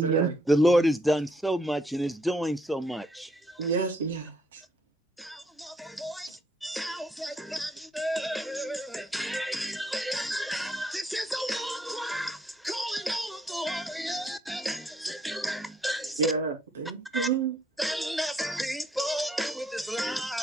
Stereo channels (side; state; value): both; normal; correlation 0.70